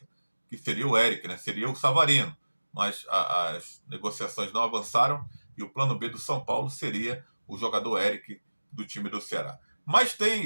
que seria o Eric, né? Seria o Savarino. Mas as negociações não avançaram e o plano B do São Paulo seria o jogador Eric do time do Ceará. Mas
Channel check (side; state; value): both; inverted; correlation -1.00